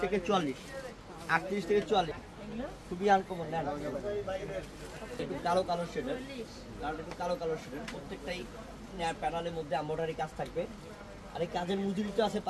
থেকে 44, 38 থেকে 44। খুবই আনকমন নেন একটু কালো কালো শেডের, কারণ একটু কালো কালো শেডের, প্রত্যেকটাই প্যানেলের মধ্যে এমব্রয়ডারি কাজ থাকবে। আর এই কাজের মজুরি তো আছে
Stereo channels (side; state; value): both; identical; correlation 1.00